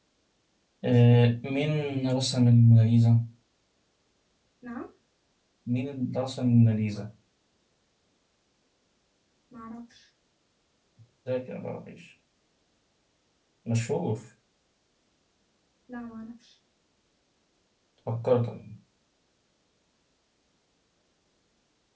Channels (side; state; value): both; identical; correlation 1.00